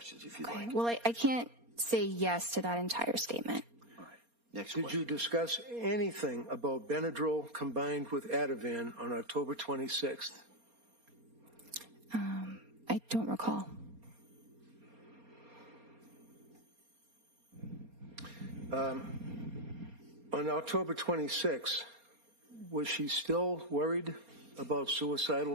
if you'd like. Well, I can't say yes to that entire statement. All right. Next Did question. you discuss anything about Benadryl combined with Ativan on October 26th? I don't recall. On October 26th, was she still worried about suicidal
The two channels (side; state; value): left; late; 4.3 ms